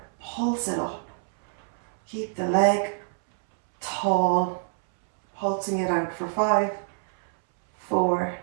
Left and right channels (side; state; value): left; silent; 61 dB below the other